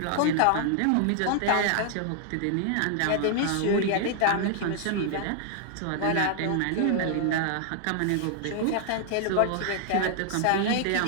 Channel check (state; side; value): different; both; correlation 0.00